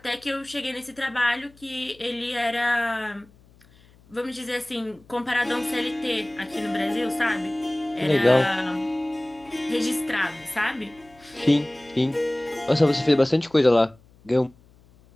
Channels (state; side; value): noise; left; hum, 28 dB below the sound